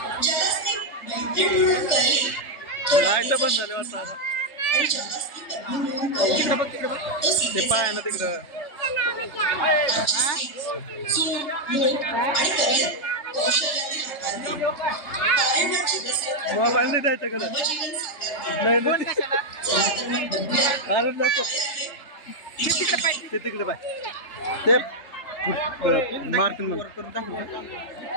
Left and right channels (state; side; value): late; right; 3.3 ms